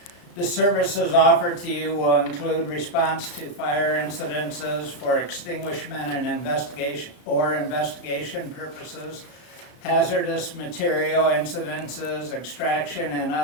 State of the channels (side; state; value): right; late; 35 ms